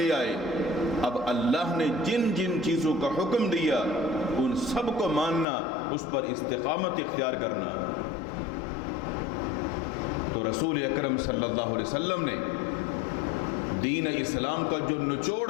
آئے، اب اللہ نے جن جن چیزوں کا حکم دیا ان سب کو ماننا، اس پر استقامت اختیار کرنا۔ تو رسول اکرم صلی اللہ علیہ وسلم نے دین اسلام کا جو نچوڑ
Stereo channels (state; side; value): drops out; right; at 5.5 s